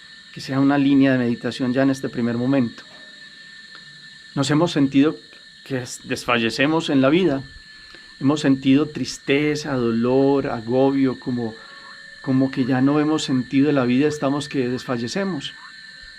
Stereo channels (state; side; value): identical; both; correlation 1.00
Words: que sea una línea de meditación ya en este primer momento. Nos hemos sentido que desfallecemos en la vida, hemos sentido tristeza, dolor, agobio, como que ya no hemos sentido de la vida, estamos que desfallecemos.